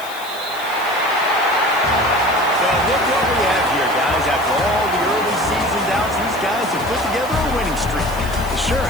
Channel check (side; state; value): left; noise; hiss, 17 dB below the sound